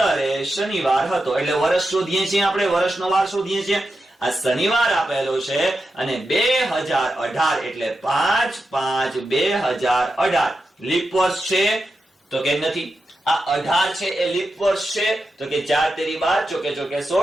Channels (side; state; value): both; normal; correlation 0.89